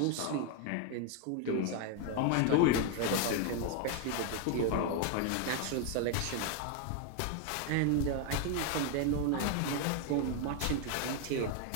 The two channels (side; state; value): both; different; correlation 0.01